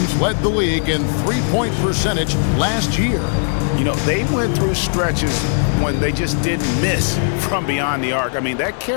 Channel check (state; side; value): silent; right; digital silence